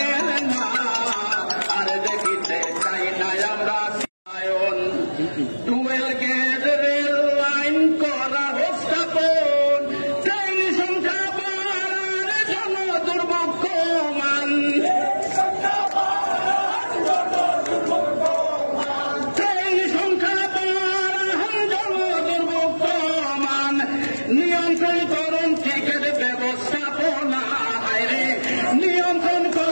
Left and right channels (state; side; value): inverted; both; correlation -1.00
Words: না আর দেখিতে চাই না আমরা টুয়েল গেট রেল লাইন করা স্থাপন ট্রেন সংখ্যা বাড়ার জন্য দুর্ভোগ কমান ট্রেন সংখ্যা বাড়ার জন্য দুর্ভোগ কমান নিয়ন্ত্রণ করুন টিকিট ব্যবস্থাপনা রে নিয়ন্ত্রণ